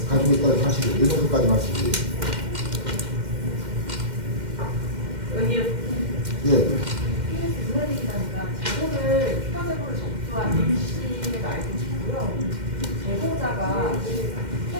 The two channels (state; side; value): late; left; 2.1 ms